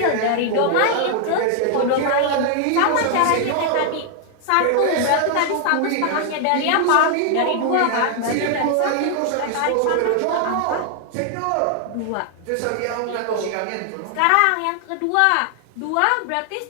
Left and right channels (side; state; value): both; different; correlation 0.00